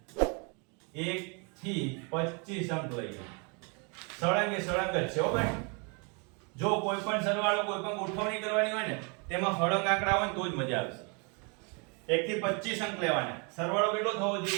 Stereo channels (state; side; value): quieter; left; 33.8 dB